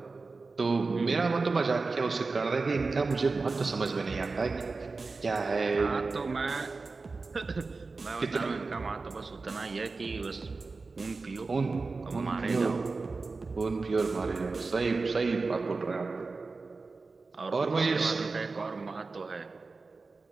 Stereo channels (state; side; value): quieter; left; 4.0 dB